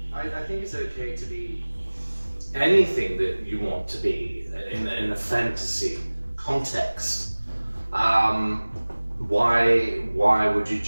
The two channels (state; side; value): inverted; both; correlation -1.00